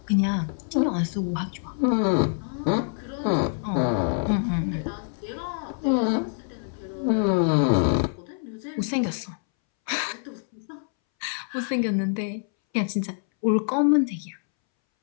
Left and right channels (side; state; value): right; silent; 61 dB below the other